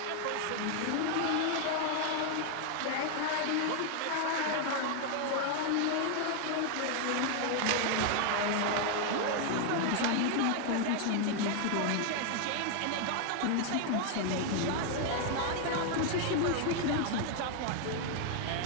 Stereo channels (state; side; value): different; both; correlation 0.00